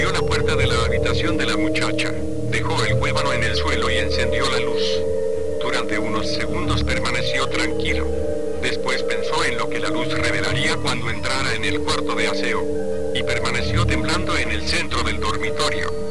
la puerta de la habitación de la muchacha. Dejó el huévano en el suelo y encendió la luz. Durante unos segundos permaneció tranquilo. Después pensó en lo que la luz revelaría cuando entrara en el cuarto de aseo, y permaneció temblando en el centro del dormitorio.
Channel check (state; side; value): identical; both; correlation 1.00